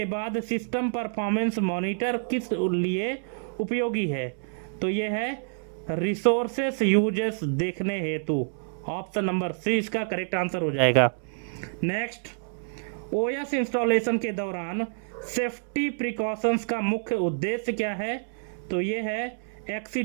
बाद सिस्टम परफॉर्मेंस मॉनिटर किस लिए उपयोगी है? तो ये है रिसोर्सेस यूजेस देखने हेतु। ऑप्शन नंबर सी इसका करेक्ट आंसर हो जाएगा। नेक्स्ट, ओएस इंस्टॉलेशन के दौरान सेफ्टी प्रिकॉशंस का मुख्य उद्देश्य क्या है? तो ये है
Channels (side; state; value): left; silent; digital silence